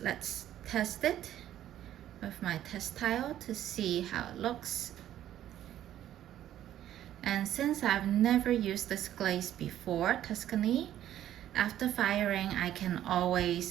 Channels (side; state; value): left; quieter; 12.0 dB